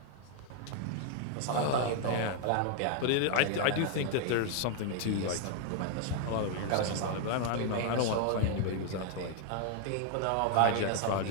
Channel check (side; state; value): both; different; correlation 0.00